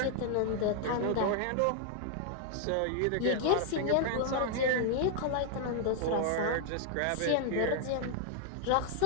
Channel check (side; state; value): both; different; correlation 0.00